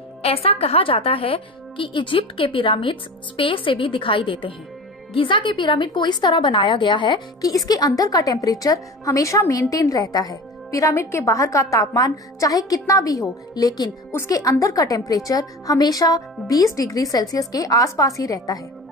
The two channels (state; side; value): normal; both; correlation 0.34